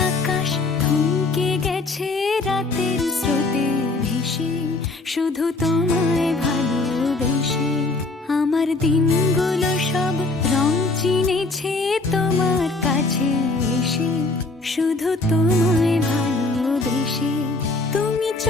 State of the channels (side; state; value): right; quieter; 3.3 dB